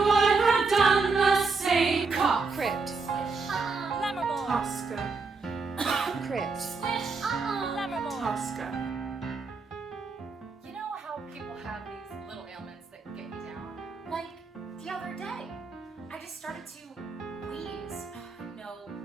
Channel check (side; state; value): left; quieter; 4.4 dB